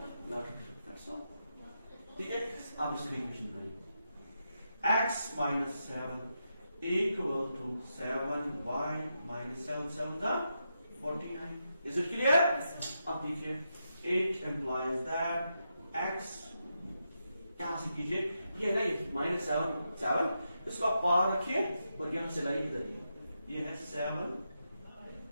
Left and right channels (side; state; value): both; inverted; correlation -0.85